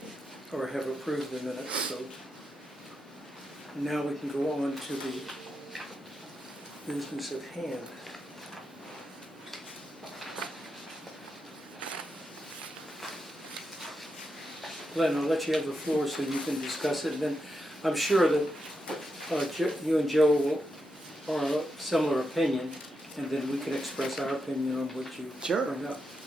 Or have approved the minutes, so now we can go on to the business at hand. Glenn, I'll let you have the floor so you can discuss it, and then I'm sure that you and Joe are of similar opinion, and then we can express our opinion on what you Sure. bring up.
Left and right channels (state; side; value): normal; both; correlation 0.85